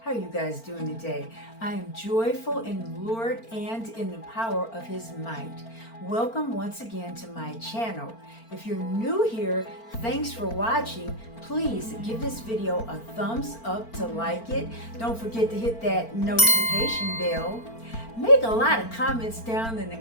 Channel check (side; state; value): right; late; 4.4 ms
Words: How are you guys doing today? I am joyful in the Lord and in the power of His might. Welcome once again to my channel. If you're new here, thanks for watching. Please give this video a thumbs up to like it. Don't forget to hit that notification bell. Make a lot of comments down in the